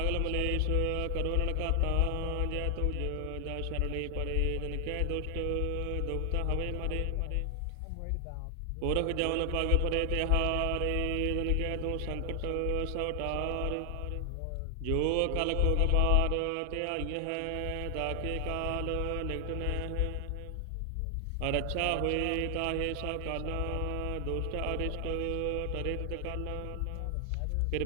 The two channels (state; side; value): different; both; correlation 0.00